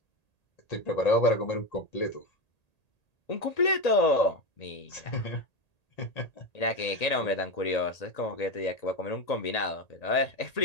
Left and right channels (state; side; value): late; right; 1.8 ms